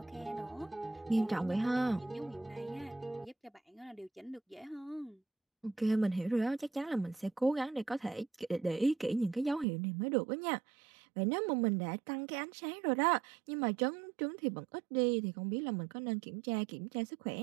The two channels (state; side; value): drops out; left; at 9.7 s